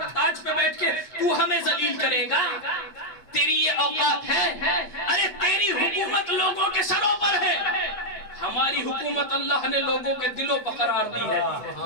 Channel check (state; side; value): late; right; 7.9 ms